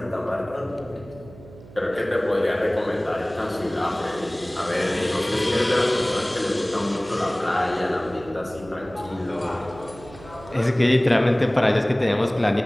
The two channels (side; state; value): right; noise; hum, 19 dB below the sound